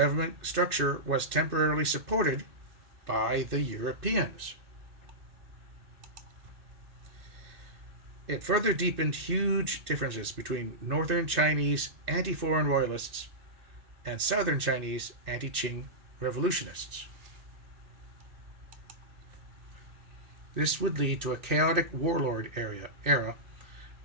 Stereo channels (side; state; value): left; late; 2.6 ms